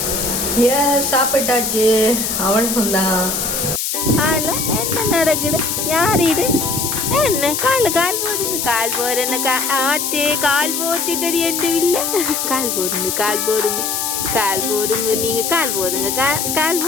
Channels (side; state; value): left; noise; hiss, 1 dB below the sound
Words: சாப்பிட்டாச்சு, அவ்வளவுதான். என்ன நடக்குது? யார் இது? என்ன கால் போடுங்க, கால் போடுறேன்னு ஆட்டே கால் போட்டுட்டு எந்த இல்லை. கால் போடுங்க, கால் போடுங்க, கால் போடுங்க. நீங்க கால் போடுங்க, கால்